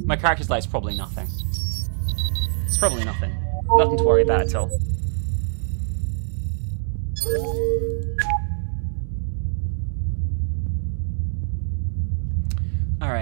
My character's light's probably nothing. It's probably nothing. Nothing to worry about at all.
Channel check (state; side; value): silent; left; 63 dB below the other